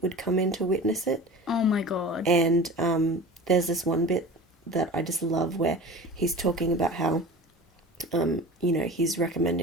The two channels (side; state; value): both; normal; correlation 0.36